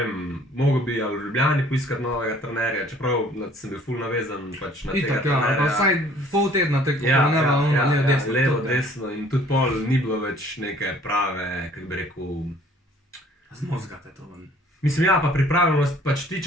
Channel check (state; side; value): normal; both; correlation 0.56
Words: mogel bi ali v Ljubljani poiskati novega trenerja, čeprav sem bil ful navezan pač na tega trenerja. Pa vsaj pol tedna tako, levo, desno in tudi pol ni bilo več neke prave, kako bi rekel... Zmozgate to ven. Mislim, ja, pa pripravljenost, pač ti,